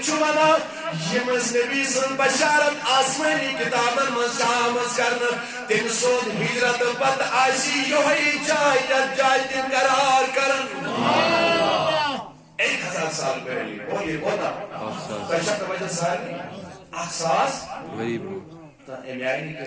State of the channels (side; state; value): both; identical; correlation 1.00